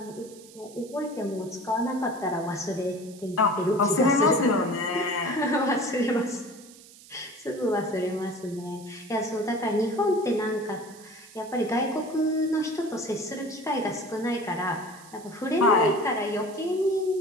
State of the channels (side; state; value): right; noise; hiss, 21 dB below the sound